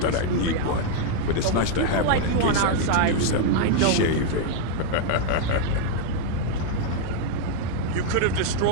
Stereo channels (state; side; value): different; both; correlation 0.00